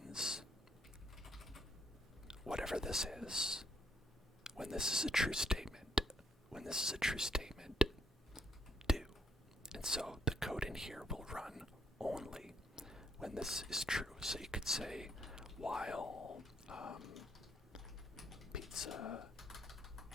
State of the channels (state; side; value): normal; both; correlation 0.73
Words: whatever this is. When this is a true statement, do. And so the code in here will run only when this is true. So you could say while pizza